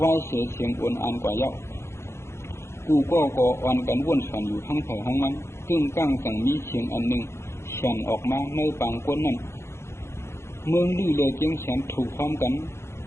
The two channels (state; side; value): late; right; 0.13 ms